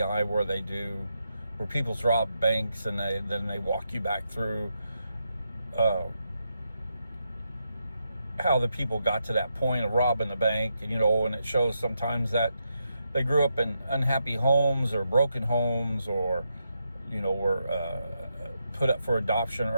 where people's rob banks and then they walk you back through how the people got to that point of robbing the bank, and it shows sometimes that they grew up in unhappy homes or broken homes, or were put up for adoption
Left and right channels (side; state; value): both; inverted; correlation -0.83